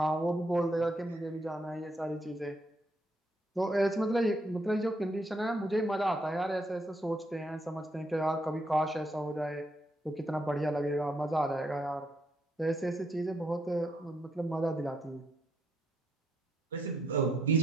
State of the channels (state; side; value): normal; both; correlation 0.75